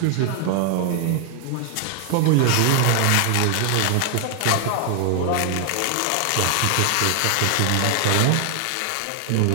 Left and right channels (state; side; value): different; both; correlation 0.00